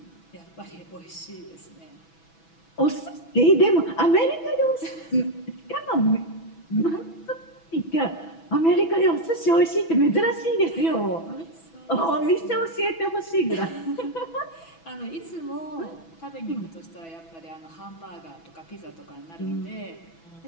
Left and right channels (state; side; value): late; right; 6.1 ms